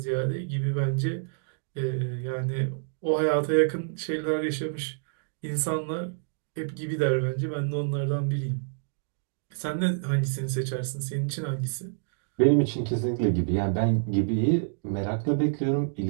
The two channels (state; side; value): silent; left; digital silence